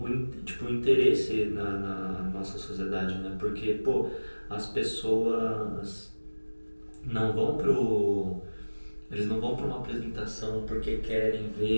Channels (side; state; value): both; inverted; correlation -1.00